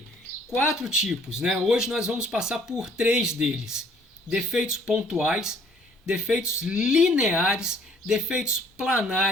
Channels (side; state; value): both; normal; correlation 0.59